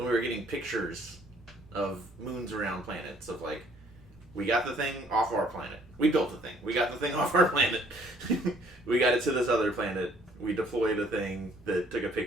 we were getting pictures of moons around planets of like, we got the thing off our planet. We built the thing. We got the thing off our planet. We got it to this other planet. We deployed a thing that took a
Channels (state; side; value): normal; both; correlation 0.61